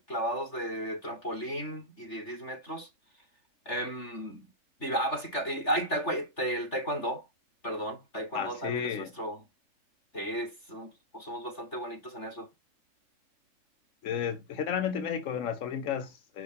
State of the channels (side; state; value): right; late; 3.4 ms